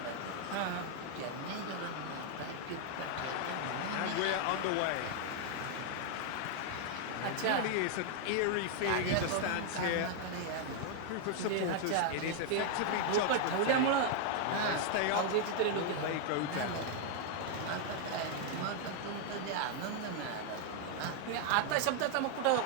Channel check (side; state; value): both; different; correlation 0.00